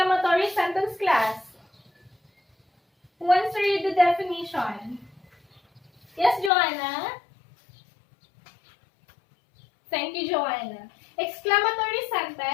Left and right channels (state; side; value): drops out; right; at 6.5 s